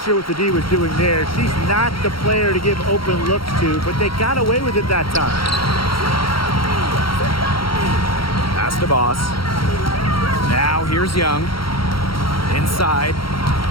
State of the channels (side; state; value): right; late; 0.74 ms